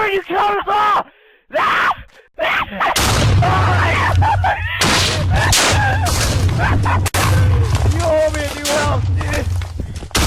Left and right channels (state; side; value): identical; both; correlation 1.00